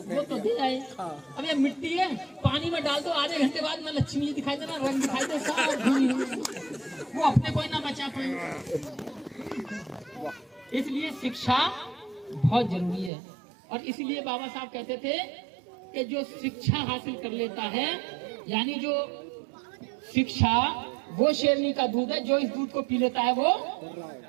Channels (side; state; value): left; drops out; at 13.1 s